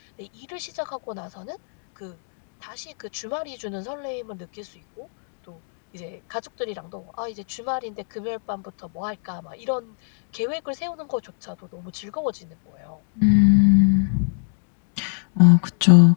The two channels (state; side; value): silent; right; digital silence